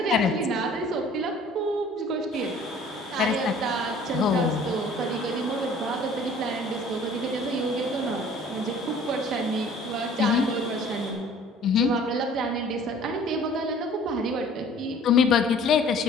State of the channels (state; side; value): normal; both; correlation 0.51